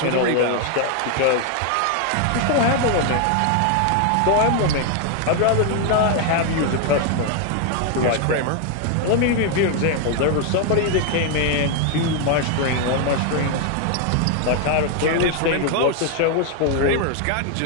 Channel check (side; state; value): both; different; correlation 0.01